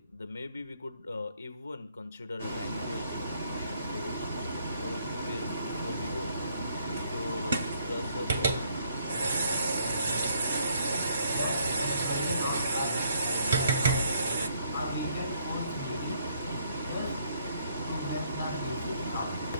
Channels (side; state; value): both; inverted; correlation -0.68